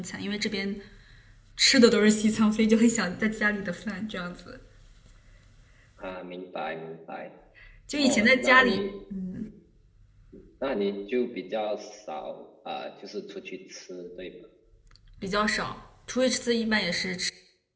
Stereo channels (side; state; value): both; identical; correlation 1.00